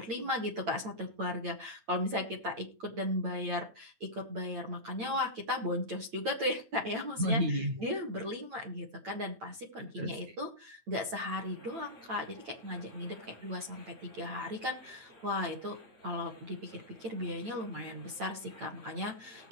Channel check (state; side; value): late; left; 9.0 ms